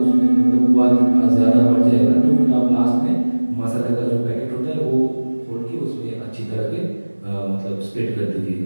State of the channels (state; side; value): inverted; both; correlation -1.00